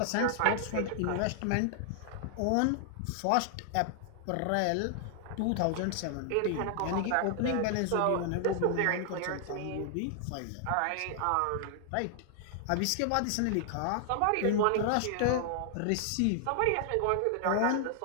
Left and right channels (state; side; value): different; both; correlation 0.00